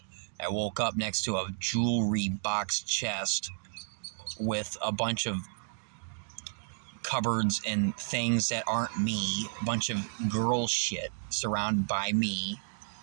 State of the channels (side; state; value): left; silent; digital silence